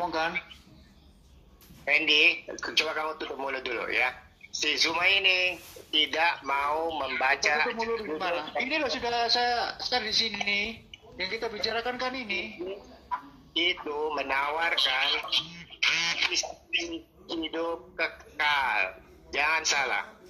Andy, coba kamu tutup mulut dulu ya. Si Zuma ini tidak mau membaca. Tutup mulut gimana? Ini loh sudah saya start di sini. Yang kita bicarakan kan ini. Itu menawarkan hidup kekal. Jangan salah.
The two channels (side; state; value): both; identical; correlation 1.00